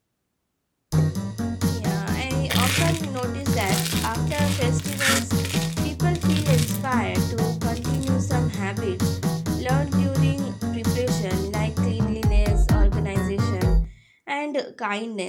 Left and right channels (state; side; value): identical; both; correlation 1.00